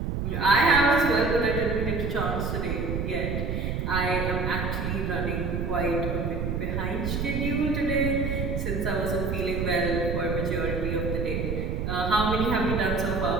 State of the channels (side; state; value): right; noise; rumble, 1 dB below the sound